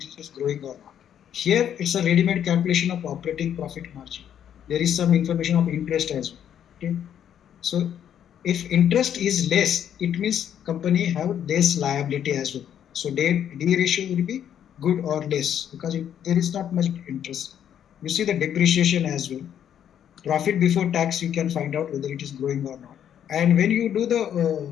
is growing or not. Here, it's a ready-made calculation of operating profit margin. There is some information of interest as well. Okay, so if interest is less, it means company have less liability as well. So D ratio will be good or less because there is not much interest. You see the depreciation as well. Profit before tax, you can find out whether it is growing or not. And when you do the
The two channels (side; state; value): right; quieter; 9.5 dB